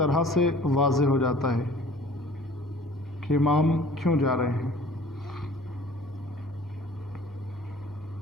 سے واضح ہو جاتا ہے کہ امام کیوں جا رہے ہیں۔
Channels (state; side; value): normal; both; correlation 0.50